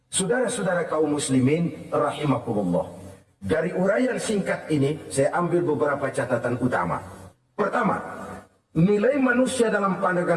Saudara-saudara kaum muslimin, rahimakumullah. Dari uraian singkat ini, saya ambil beberapa catatan utama. Pertama, nilai manusia dalam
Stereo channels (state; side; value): identical; both; correlation 1.00